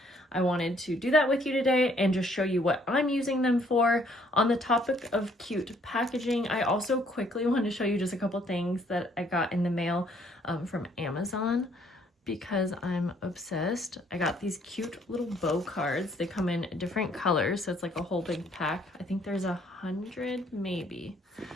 I wanted to do that with you today and just show you what I'm using them for. On the topic of cute packaging, I also quickly want to show you just a couple things that I got in the mail from Amazon, because I'm obsessed. I got these cute little bow cards. They come in different colors, so it's like a whole big pack. I think there's 100, maybe.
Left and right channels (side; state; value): both; normal; correlation 0.64